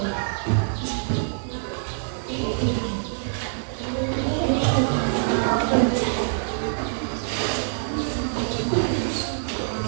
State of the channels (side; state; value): left; silent; 57 dB below the other